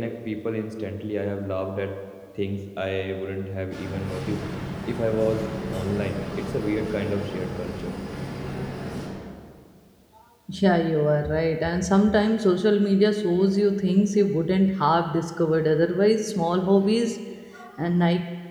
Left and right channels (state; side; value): identical; both; correlation 1.00